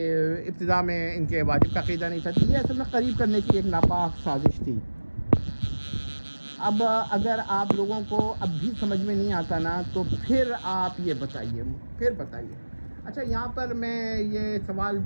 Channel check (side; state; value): both; inverted; correlation -1.00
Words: ابتدا میں ان کے واجب کا عقیدہ نہیں تھا۔ یہ اصل میں قریب کرنے کی ایک ناپاک سازش تھی۔ اب اگر آپ لوگوں کو اب بھی سمجھ میں نہیں آتا نا تو پھر آپ یہ بتائیے۔ اچھا، یہاں پر میں یہ سوال